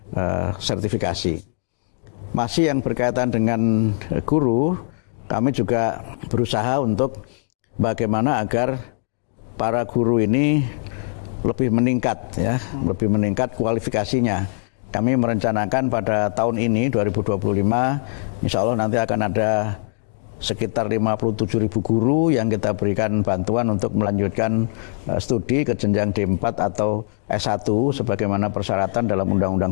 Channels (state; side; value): silent; right; digital silence